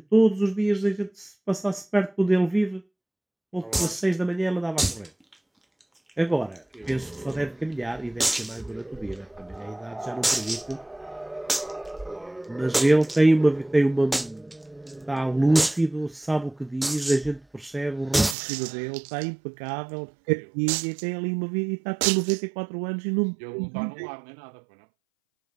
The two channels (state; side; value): drops out; left; at 18.4 s